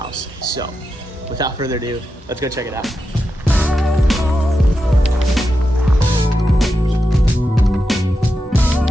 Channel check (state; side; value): normal; both; correlation 0.88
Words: So without further ado, let's go check it out.